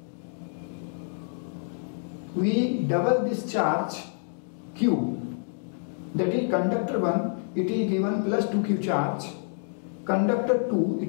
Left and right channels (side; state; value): right; silent; digital silence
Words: we double this charge Q, that is conductor 1, it is given plus 2Q charge, conductor 2,